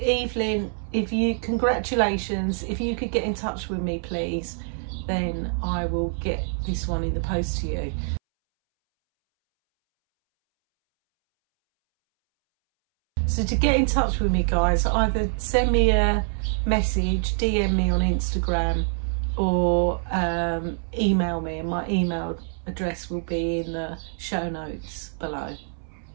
Evelyn, congratulations. If you could get in touch with me, please, then I will get this one in the post to you. So to get in touch with me, guys, either send me a message, DM me on Instagram, or email me, and my email address will be in the show notes below.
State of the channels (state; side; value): silent; left; 62 dB below the other